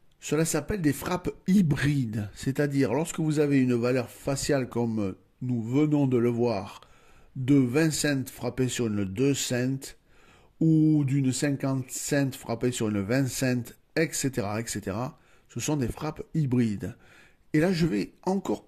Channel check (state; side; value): identical; both; correlation 1.00